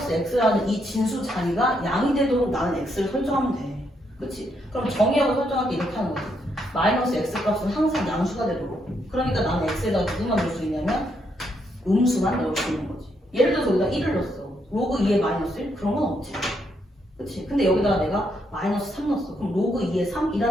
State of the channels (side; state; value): both; normal; correlation 0.76